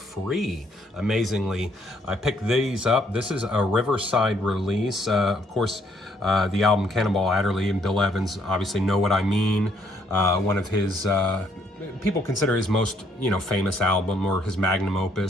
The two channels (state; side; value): normal; both; correlation 0.68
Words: amazingly. I picked these up. This is a Riverside release. Of course, the album Cannonball Adderley and Bill Evans obviously know what I mean. One of his, people consider his most, famous album or his magnum